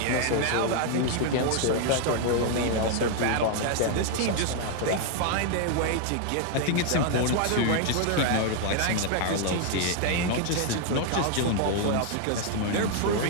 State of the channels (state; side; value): different; both; correlation 0.00